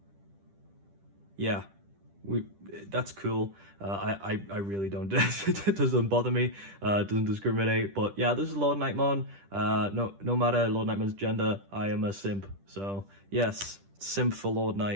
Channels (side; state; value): left; late; 10 ms